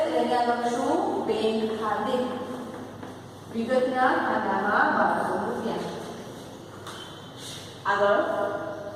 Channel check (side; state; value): both; identical; correlation 1.00